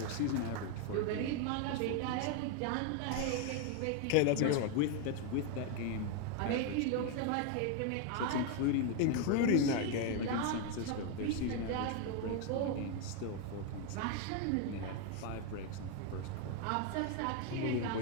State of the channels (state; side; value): different; both; correlation 0.01